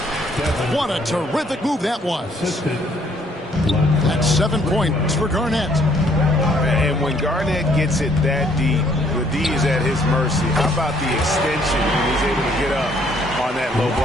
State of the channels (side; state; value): both; normal; correlation 0.64